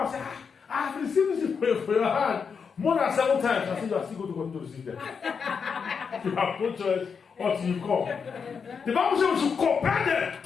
said, I have received this for your hand more than 7 times. I said, you are still going to continue to receive them. You have no choice until you come. The Bible says we should compel them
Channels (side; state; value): right; quieter; 6.0 dB